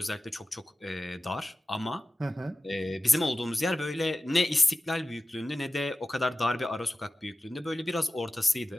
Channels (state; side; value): normal; both; correlation 0.95